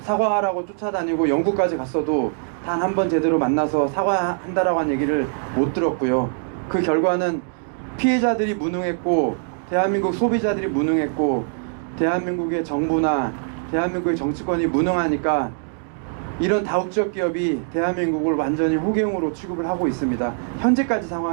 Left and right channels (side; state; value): left; silent; digital silence